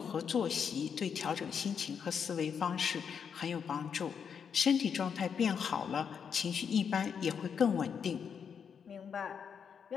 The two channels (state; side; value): quieter; right; 7.0 dB